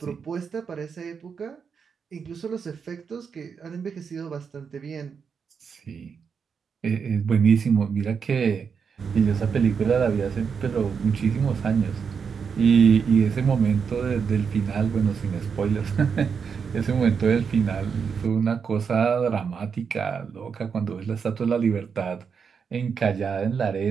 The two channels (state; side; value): quieter; left; 6.2 dB